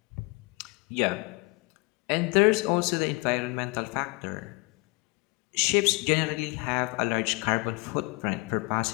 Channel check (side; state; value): right; quieter; 26.5 dB